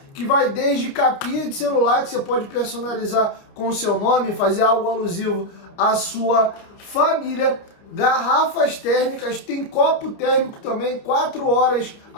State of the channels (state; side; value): late; right; 29 ms